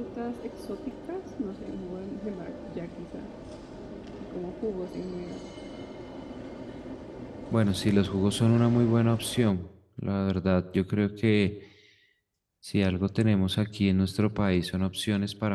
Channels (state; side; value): identical; both; correlation 1.00